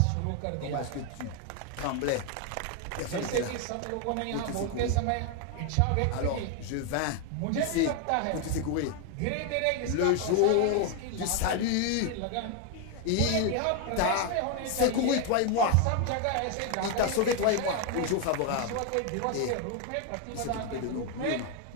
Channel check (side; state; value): both; different; correlation 0.01